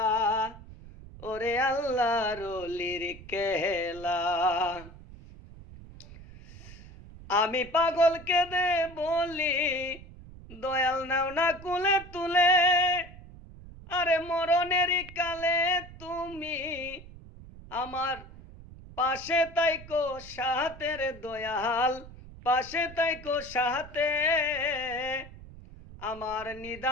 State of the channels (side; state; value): right; noise; rumble, 17 dB below the sound